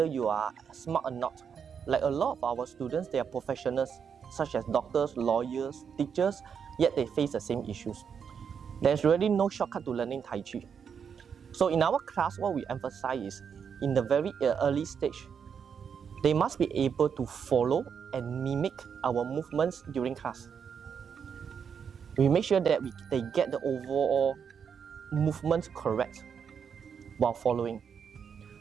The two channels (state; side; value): quieter; left; 7.0 dB